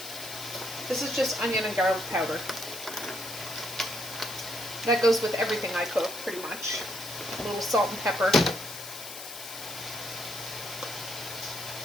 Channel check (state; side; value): noise; left; hiss, 10 dB below the sound